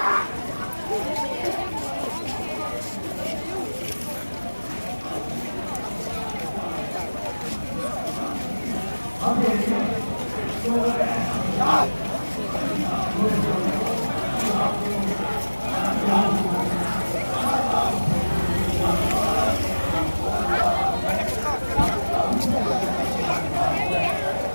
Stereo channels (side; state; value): both; inverted; correlation -1.00